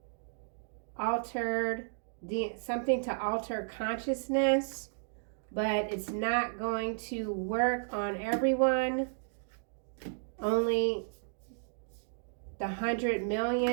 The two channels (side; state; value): left; silent; digital silence